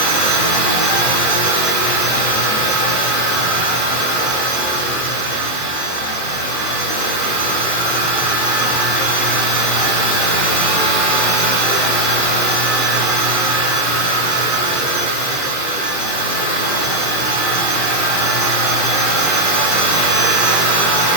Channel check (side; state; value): right; late; 23 ms